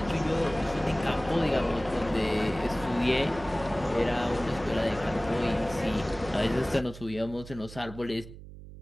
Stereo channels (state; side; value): noise; right; hum, 15 dB below the sound